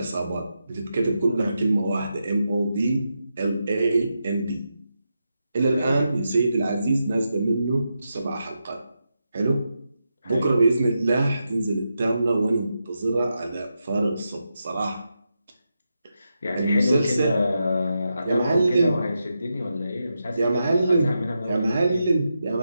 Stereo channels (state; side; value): inverted; both; correlation -0.86